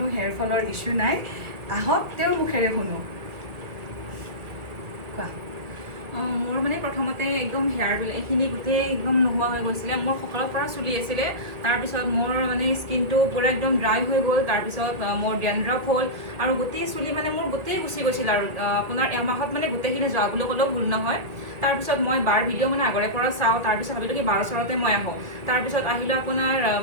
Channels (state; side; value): late; left; 1.9 ms